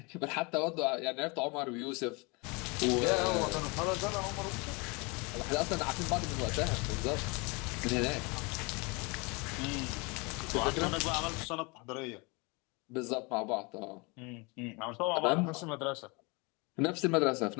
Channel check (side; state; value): right; quieter; 28.5 dB